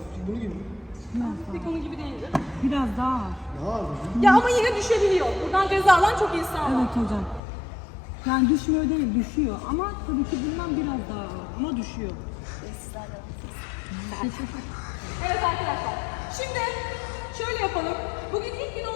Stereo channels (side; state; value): right; drops out; at 7.4 s